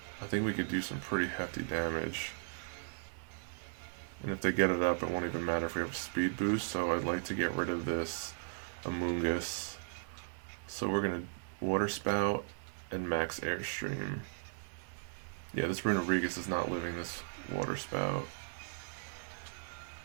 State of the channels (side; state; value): left; silent; digital silence